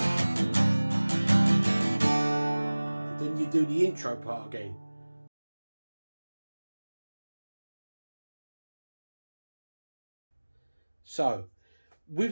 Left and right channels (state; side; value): inverted; both; correlation -1.00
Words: Then you do the intro part again. So,